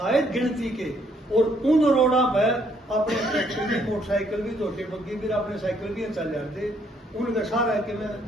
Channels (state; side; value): normal; both; correlation 0.68